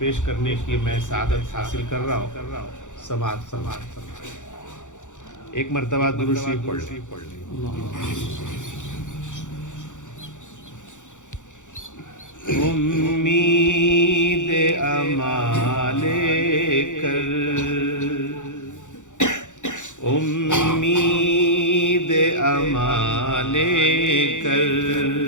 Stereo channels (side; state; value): right; late; 0.85 ms